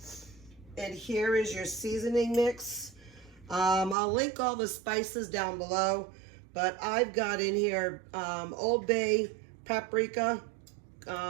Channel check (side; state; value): left; drops out; at 4.0 s